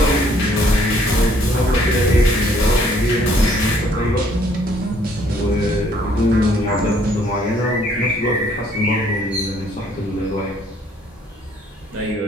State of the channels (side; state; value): both; normal; correlation 0.63